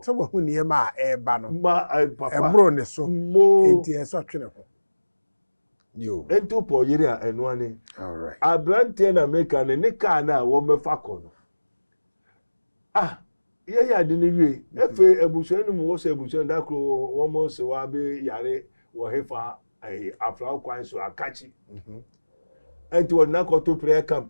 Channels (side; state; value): both; inverted; correlation -1.00